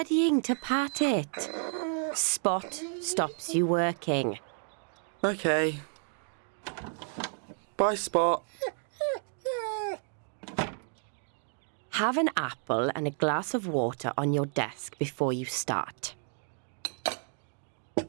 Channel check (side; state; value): left; silent; 57 dB below the other